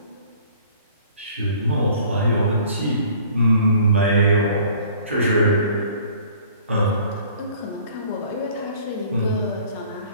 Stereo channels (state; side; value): inverted; both; correlation -0.51